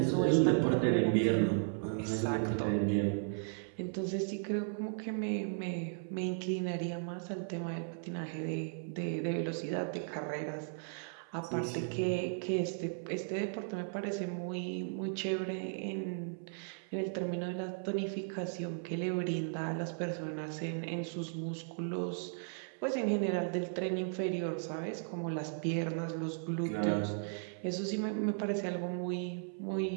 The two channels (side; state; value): left; silent; 54 dB below the other